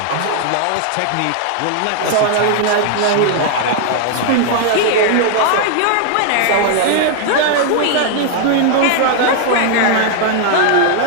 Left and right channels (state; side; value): different; both; correlation 0.00